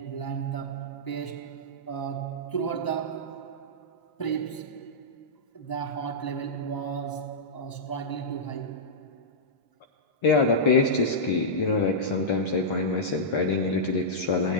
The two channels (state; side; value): late; right; 1.0 ms